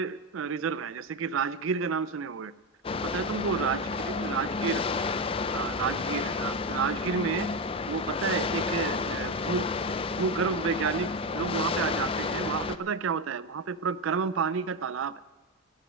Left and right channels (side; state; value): both; normal; correlation 0.13